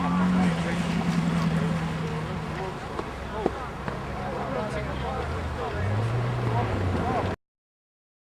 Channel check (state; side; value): identical; both; correlation 1.00